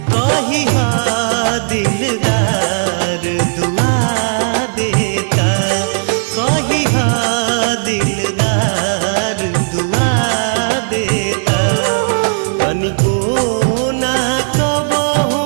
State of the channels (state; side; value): silent; left; 68 dB below the other